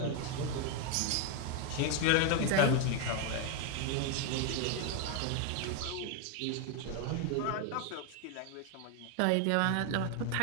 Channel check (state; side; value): different; both; correlation 0.01